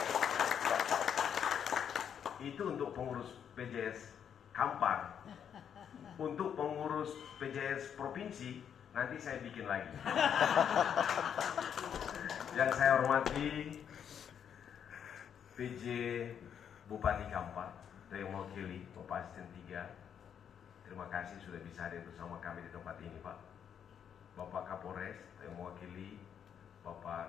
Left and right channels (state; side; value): quieter; right; 8.3 dB